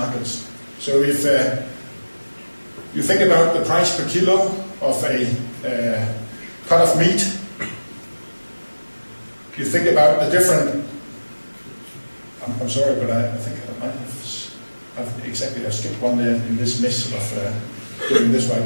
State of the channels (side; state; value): both; inverted; correlation -1.00